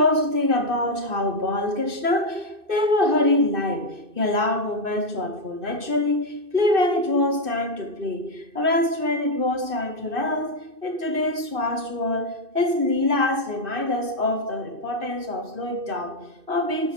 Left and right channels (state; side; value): late; left; 2.6 ms